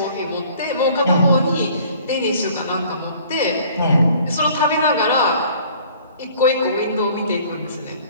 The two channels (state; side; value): inverted; both; correlation -0.53